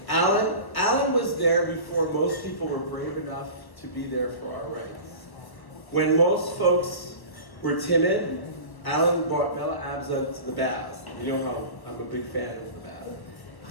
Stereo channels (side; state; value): right; late; 1.2 ms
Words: Alan was there before most people were brave enough to be there for our rights. When most folks were timid, Alan brought Bella Abza to the baths. You know how I'm a big fan of the bath.